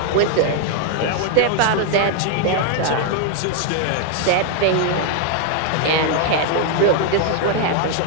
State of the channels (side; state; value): both; different; correlation 0.00